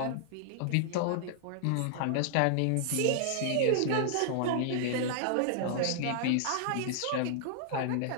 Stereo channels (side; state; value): both; different; correlation -0.01